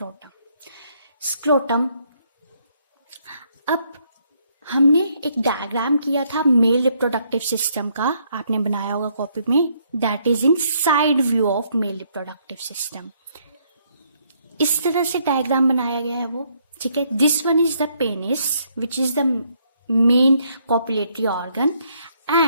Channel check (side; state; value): both; inverted; correlation -0.71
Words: Scrotum, अब हमने एक diagram किया था male reproductive system का, आपने बनाया होगा कॉपी में, that is in side view of male reproductive system. इस तरह से डायग्राम बनाया गया है वो, ठीक है. This one is the penis which is the main copulatory organ.